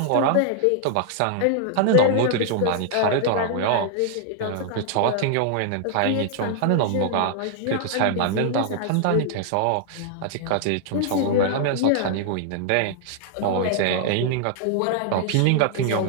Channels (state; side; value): different; both; correlation 0.00